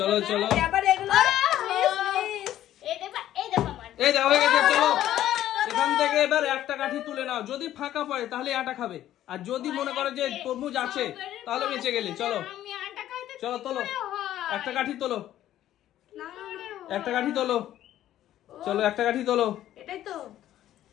চলো, আবার এগুলো এই দেখো আমার। এই দাও হয়ে গেছে। চলো এখান থেকে এবার একটা কাঠি তুলে নাও, যদি ফাঁকা পড়ে তাহলে আটা খাবে, আর যদি মনে করো যে তরমুজ আছে তাহলে বেঁচে গেলে। চলো আমি আটা খাইতে চলো তোলো, একটা কাঠি তোলো, না একটা কাঠি তোলো, চলো একটা কাঠি তোলো। এটাই তো।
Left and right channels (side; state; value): right; quieter; 12.6 dB